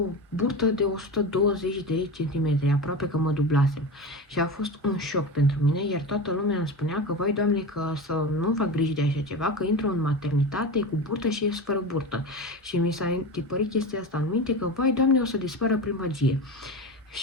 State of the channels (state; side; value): normal; both; correlation 0.25